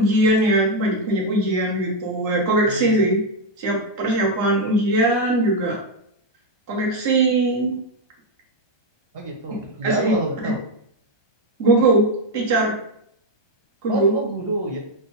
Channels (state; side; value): late; right; 1.2 ms